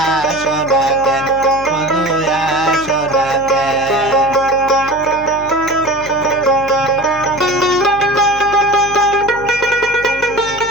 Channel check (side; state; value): left; noise; hum, 17 dB below the sound